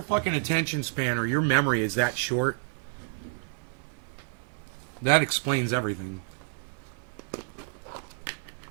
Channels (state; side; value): silent; left; 58 dB below the other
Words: fucking attention span or your memory is that short, that explains everything.